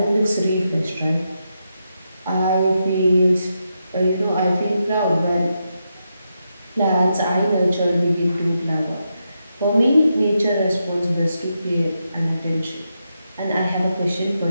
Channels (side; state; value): both; inverted; correlation -0.85